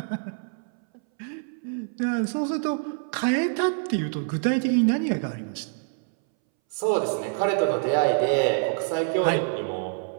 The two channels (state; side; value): silent; left; 61 dB below the other